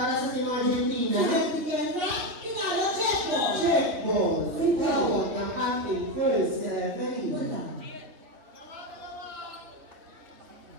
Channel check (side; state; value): left; late; 3.1 ms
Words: sa Team Argentina. Sinag ni Kendra. Pinalo, check ball. Check ball. Tawag ng ating first referee. Wala.